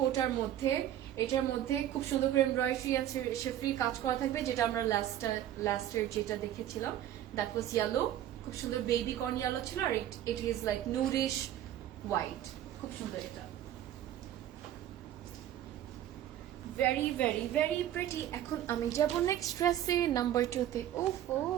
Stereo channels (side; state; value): left; quieter; 11.9 dB